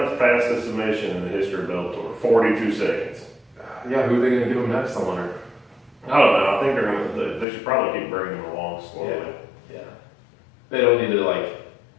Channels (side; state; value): right; drops out; at 7.5 s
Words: fastest submission in the history of Bellator. 42 seconds. Yeah, who are they going to give him next? I wonder. I don't know. I think they should probably keep bringing him along slowly. Yeah. They don't need to like